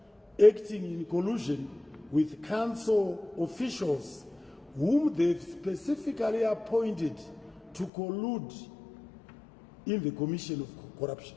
acting in collusion with council officials whom they've specifically appointed to collude in the commission of corruption.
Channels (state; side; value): drops out; right; at 7.9 s